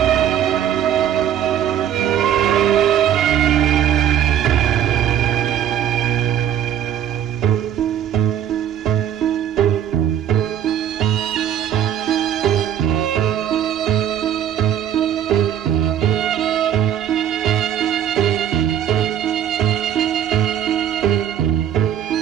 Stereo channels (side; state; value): left; quieter; 10.1 dB